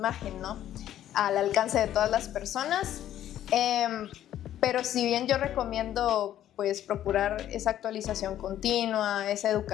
¿no? Al alcance de todas las personas. Pero si bien yo recomiendo pues procurar esa actualización continua, esa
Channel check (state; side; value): quieter; right; 11.8 dB